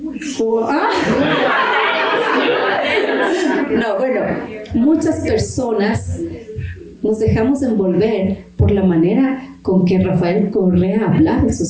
No, bueno, muchas personas nos dejamos envolver por la manera con que Rafael Correa hablaba en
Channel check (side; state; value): both; identical; correlation 1.00